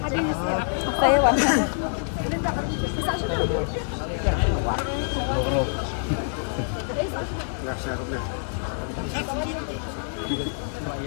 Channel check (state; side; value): silent; right; digital silence